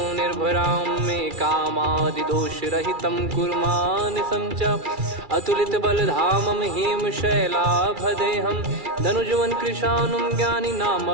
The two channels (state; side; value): late; left; 2.3 ms